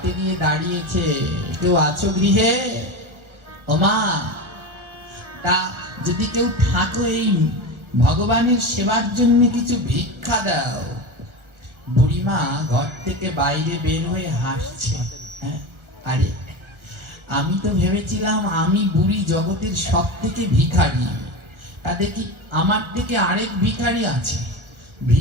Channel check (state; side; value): late; left; 1.4 ms